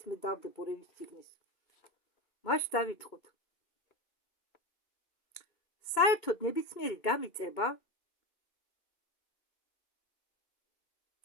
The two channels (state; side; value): late; right; 2.2 ms